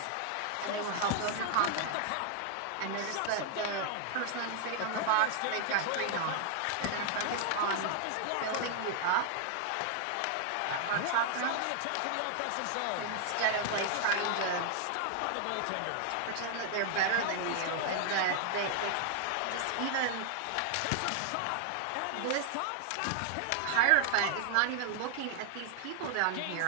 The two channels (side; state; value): both; different; correlation 0.00